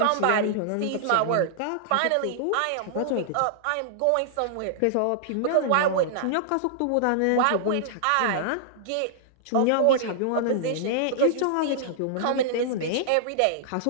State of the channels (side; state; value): both; different; correlation -0.01